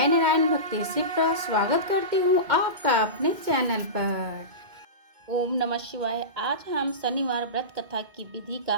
नारायण भक्ति शिप्रा स्वागत करती हूँ आपका अपने चैनल पर। ओम नमः शिवाय। आज हम शनिवार व्रत कथा की विधि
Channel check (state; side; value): late; left; 2.1 ms